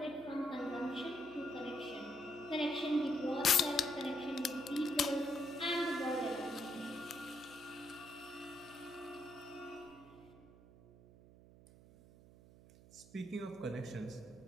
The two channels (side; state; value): right; noise; hum, 21 dB below the sound